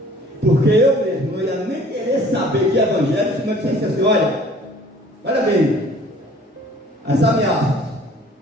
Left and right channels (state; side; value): normal; both; correlation 0.52